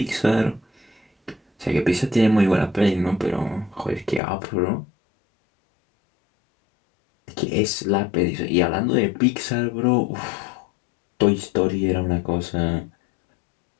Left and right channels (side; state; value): right; drops out; at 4.2 s